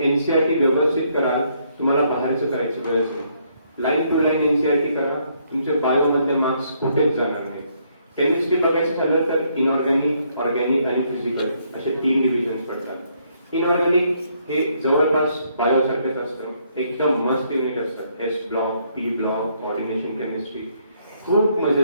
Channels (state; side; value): inverted; both; correlation -0.71